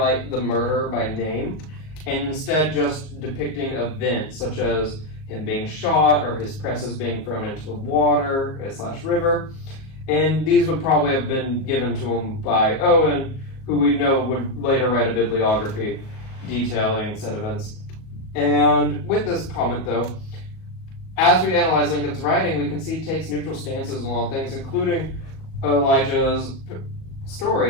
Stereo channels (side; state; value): right; late; 38 ms